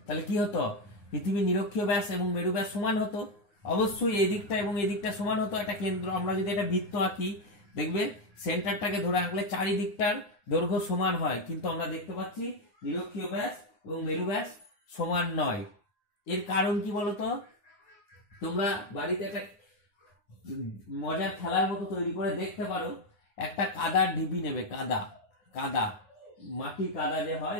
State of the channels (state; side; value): late; right; 9.7 ms